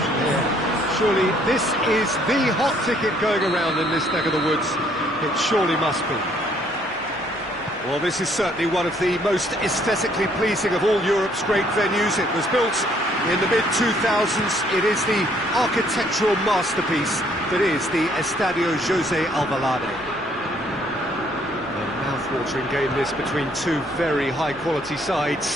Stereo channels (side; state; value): both; normal; correlation 0.65